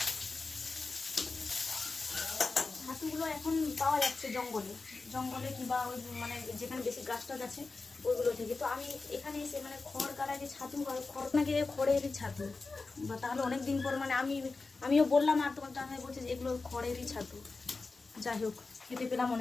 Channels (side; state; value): right; quieter; 3.9 dB